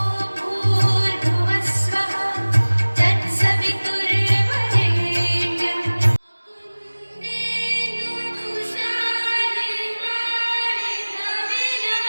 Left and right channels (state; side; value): inverted; both; correlation -1.00